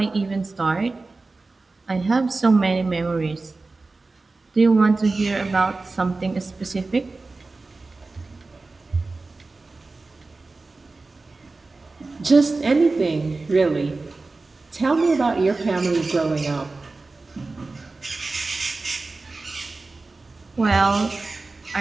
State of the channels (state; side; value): quieter; left; 3.6 dB